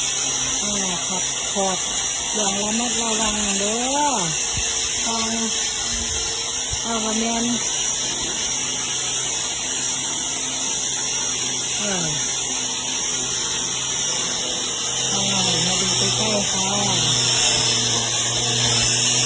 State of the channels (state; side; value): identical; both; correlation 1.00